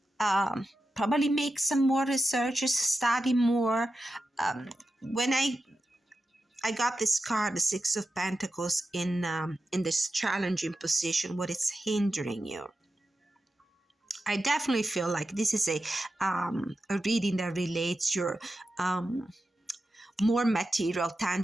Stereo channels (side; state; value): both; normal; correlation 0.91